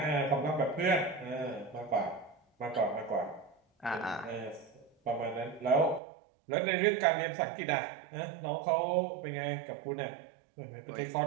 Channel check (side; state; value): left; drops out; at 6.0 s